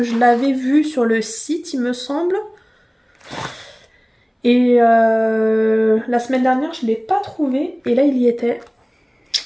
je l'avais vu sur le site, il me semble. Et la semaine dernière, je ne l'ai pas trouvé. Et là, il y était.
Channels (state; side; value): identical; both; correlation 1.00